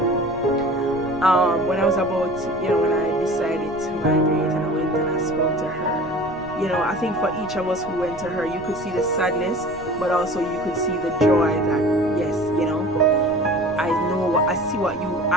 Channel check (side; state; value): left; noise; rumble, 19 dB below the sound